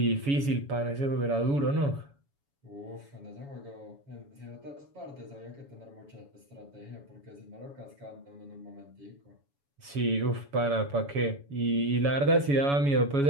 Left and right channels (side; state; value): left; late; 7.1 ms